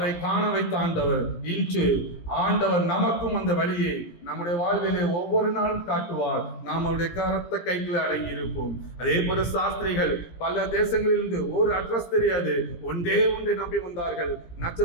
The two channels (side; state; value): right; late; 17 ms